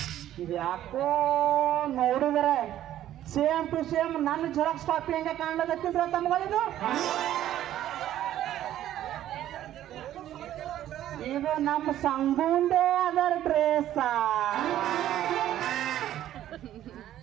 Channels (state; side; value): quieter; left; 12.4 dB